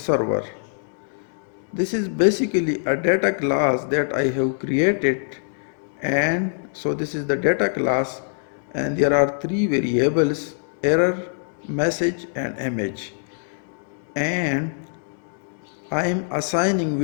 This is basically a data class that I have created, and so this is the data class and there are three variables: error, message and image, and I am assigning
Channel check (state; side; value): silent; right; digital silence